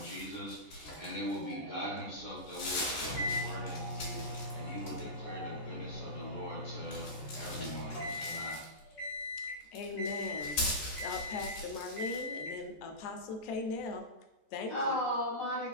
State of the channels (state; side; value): late; right; 14 ms